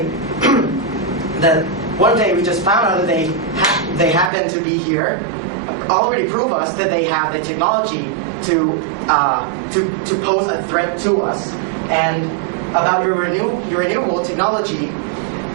one day we just found out that they happen to be here already prove us that they have the technology to pose a threat to us. And about your renewable technology,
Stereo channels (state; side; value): drops out; left; at 4.3 s